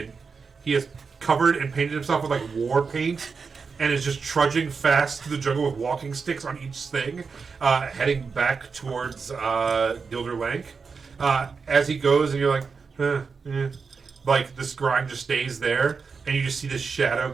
He is covered and painted himself with like war paint, and is just trudging fast through the jungle with walking sticks on each thing, heading back towards Gilder Lank. As he goes, and you're like, like the scrying just stays there, and you just see this shadow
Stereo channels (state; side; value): quieter; left; 5.2 dB